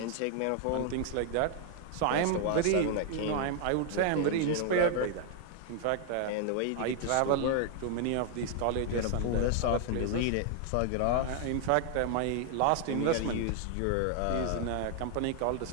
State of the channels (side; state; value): both; different; correlation 0.00